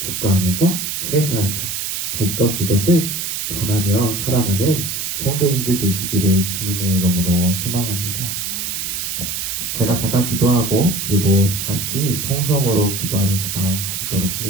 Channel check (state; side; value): noise; right; hiss, 3 dB below the sound